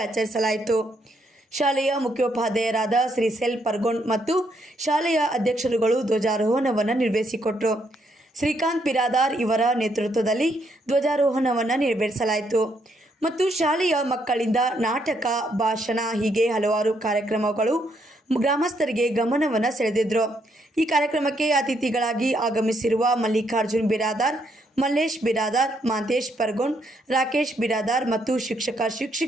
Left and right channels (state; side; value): normal; both; correlation 0.74